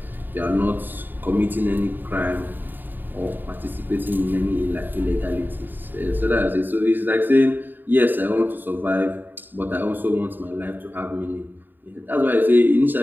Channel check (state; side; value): late; left; 0.091 ms